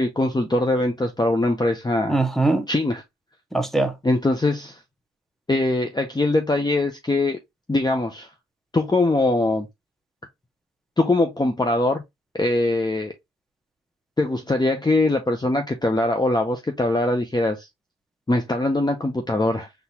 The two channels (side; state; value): both; normal; correlation 0.77